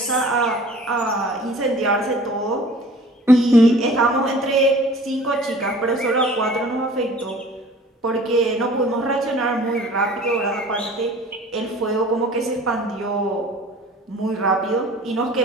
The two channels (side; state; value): both; normal; correlation 0.47